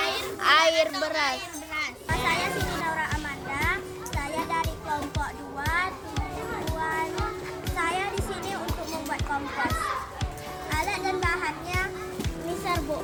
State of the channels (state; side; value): identical; both; correlation 1.00